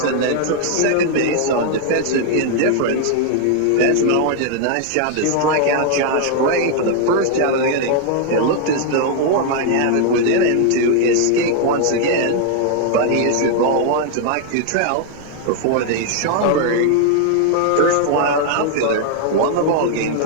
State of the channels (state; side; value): different; both; correlation 0.00